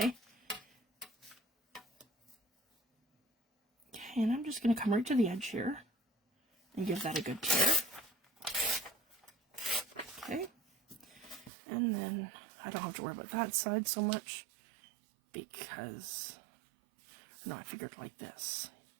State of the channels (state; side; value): drops out; left; at 11.5 s